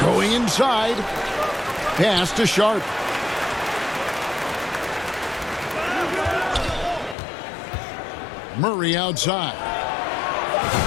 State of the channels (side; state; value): right; drops out; at 7.2 s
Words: going inside. Pass to Sharp. Murray outside.